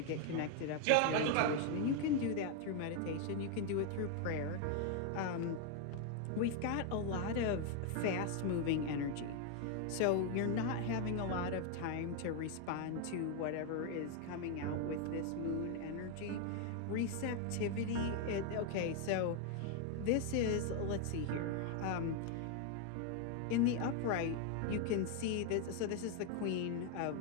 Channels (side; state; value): both; different; correlation 0.01